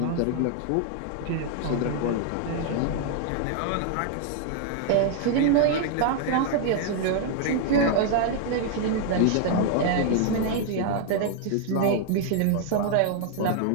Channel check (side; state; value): both; different; correlation 0.00